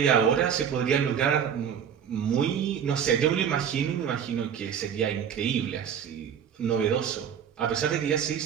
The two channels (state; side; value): quieter; left; 8.1 dB